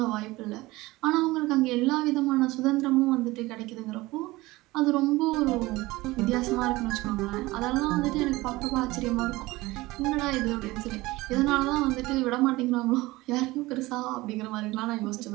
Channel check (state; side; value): quieter; left; 20.0 dB